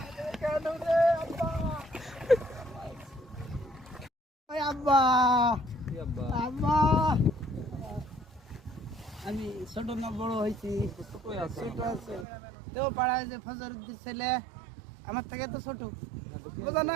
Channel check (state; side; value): drops out; left; at 12.2 s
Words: কেন রে আব্বা ওই আব্বা কি আব্বা? আব্বা আমি ছোট না বড় হয়েছি কই আছে? ছোট আছে তো পাড়ায় যে ফজরুদ্দিন ছেলে আমার থেকে তো ছোট বুঝা